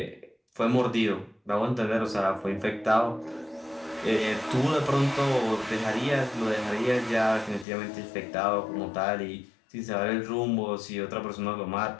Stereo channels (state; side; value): drops out; right; at 7.7 s